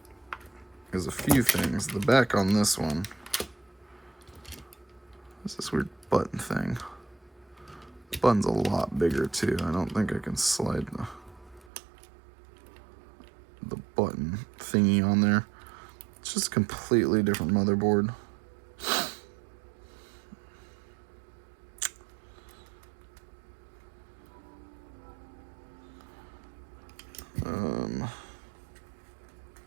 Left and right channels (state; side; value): drops out; left; at 11.7 s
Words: is a few things. The back on this one is this weird button thing. The button's a lot bigger too. I don't think I can slide the button thingy on there. It's just a completely different motherboard.